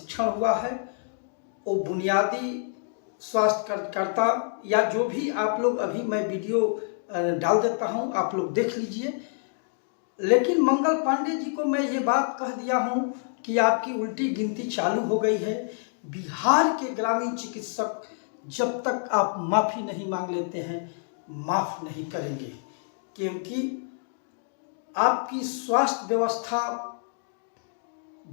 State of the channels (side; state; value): right; silent; 60 dB below the other